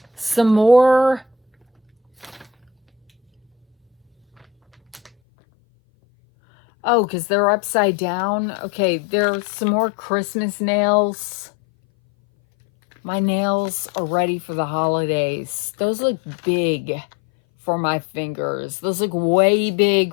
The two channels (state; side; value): drops out; right; at 5.1 s